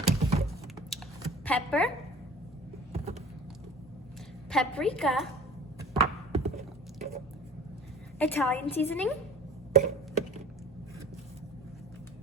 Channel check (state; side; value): normal; both; correlation 0.43